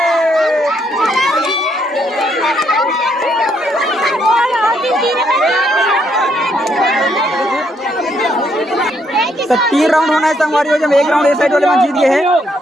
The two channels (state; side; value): normal; both; correlation 0.73